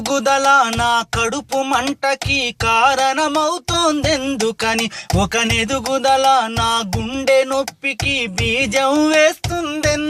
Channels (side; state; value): both; identical; correlation 1.00